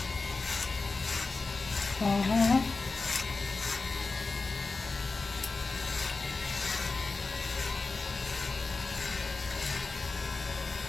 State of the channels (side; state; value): right; quieter; 3.9 dB